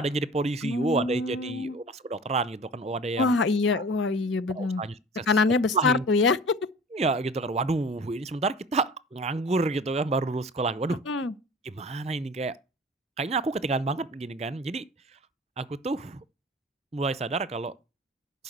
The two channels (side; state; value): both; normal; correlation 0.41